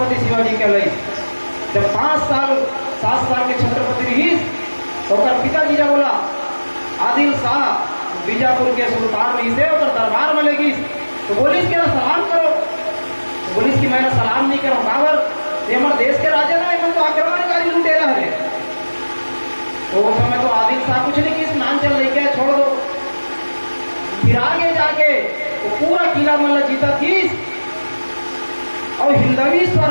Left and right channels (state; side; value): inverted; both; correlation -1.00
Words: शिवाजी कहलाई। जब 7 साल के छत्रपति रही तो पिताजी ने बोला आदिल शाह बीजापुर के सुल्तान रही से और दरबार में लेगी तो बोलिस कि सलाम करो तो बोलिस कि मैं सलाम नहीं करो काबर ये हमारे देश के राजा ना इन्होंने तो आक्रमणकारी लुटेरा है। तो उस समय तो आदिल शाह कुछ नहीं की स्नान चल रही क्या छोड़ दो। फिर आगे जाके वो पूरा किला मल्ला जीता थी और हिंदवी